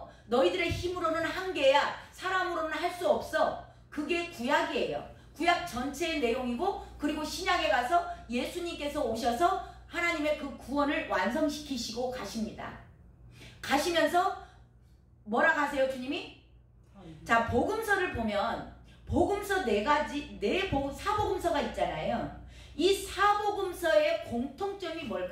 너희들의 힘으로는 한계야, 사람으로는 할 수 없어. 그게 구약이에요. 구약 전체의 내용이고, 그리고 신약에 가서 예수님께서 오셔서 하나님의 그 구원을 완성시키시고 가십니다. 가시면서 뭐라 하세요, 주님이? 자, 복음서를 보면 복음서 사복음서가 있잖아요. 이 사복음서의 공통점이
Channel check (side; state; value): both; identical; correlation 1.00